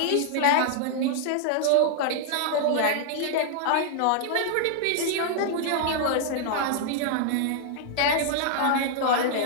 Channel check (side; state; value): both; different; correlation -0.01